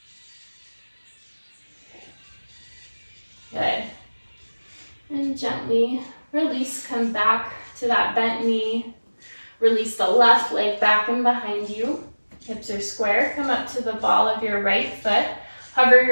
Good. And gently release, come back to that bent knee. Release the left leg back and behind you. Hips are square. Come up to the ball of your right foot. Hover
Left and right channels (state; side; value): inverted; both; correlation -1.00